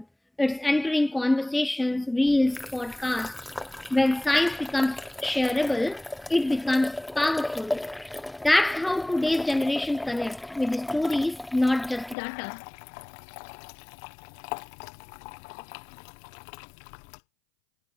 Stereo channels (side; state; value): right; drops out; at 12.2 s